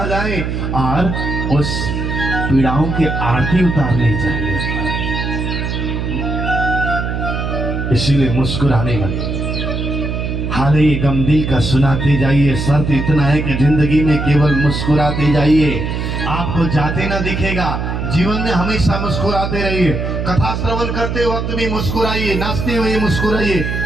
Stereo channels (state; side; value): noise; right; hum, 3 dB below the sound